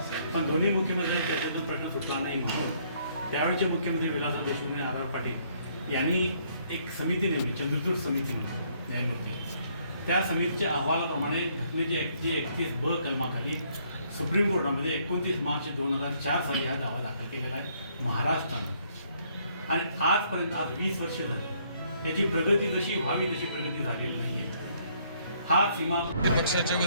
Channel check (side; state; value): both; inverted; correlation -0.67